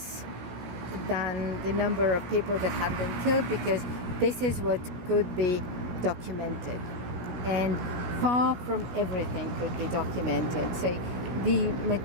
than the number of people that had been killed, because this is what could be documented. And far from everything could be documented. So the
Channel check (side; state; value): left; late; 16 ms